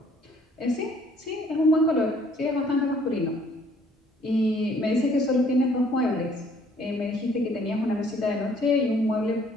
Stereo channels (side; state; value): both; normal; correlation 0.60